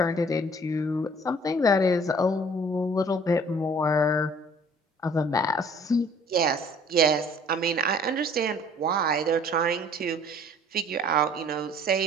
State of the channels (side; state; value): both; normal; correlation 0.53